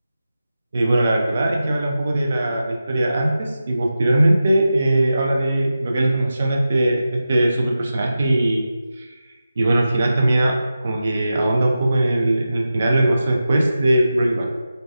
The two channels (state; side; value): inverted; both; correlation -0.92